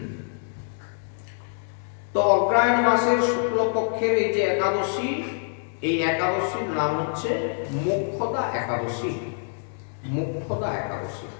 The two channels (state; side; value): silent; right; digital silence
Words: তো অগ্রহায়ণ মাসের শুক্লপক্ষের এই যে একাদশী, এই একাদশীর নাম হচ্ছে মোক্ষদা একাদশী। মোক্ষদা একাদশী